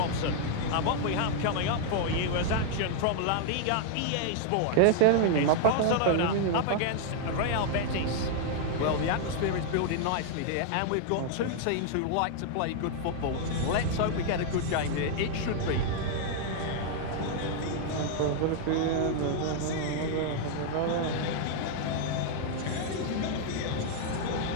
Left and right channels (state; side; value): different; both; correlation 0.00